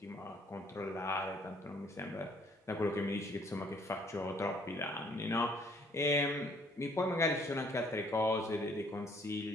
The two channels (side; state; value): both; normal; correlation 0.62